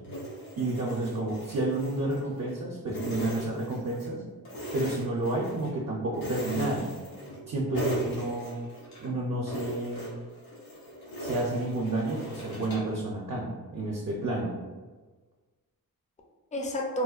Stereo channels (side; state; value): both; normal; correlation 0.34